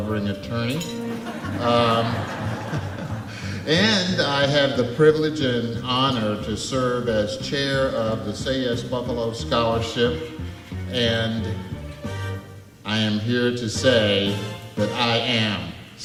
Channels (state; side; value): identical; both; correlation 1.00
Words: attorney. And I have the privilege and honor to serve as chair of the Say Yes Buffalo Scholarship. And I am here to say that I am